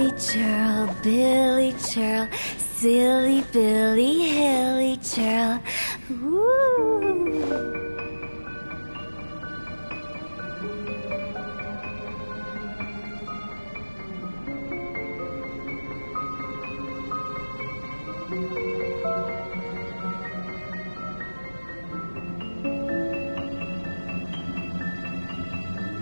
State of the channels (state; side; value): inverted; both; correlation -1.00